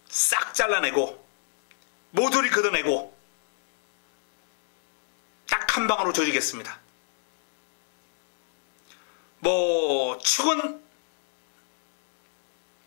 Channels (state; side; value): silent; right; digital silence